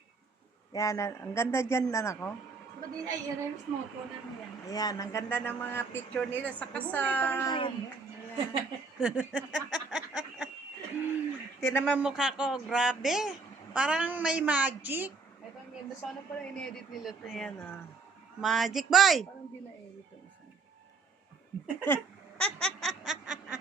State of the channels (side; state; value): left; quieter; 4.2 dB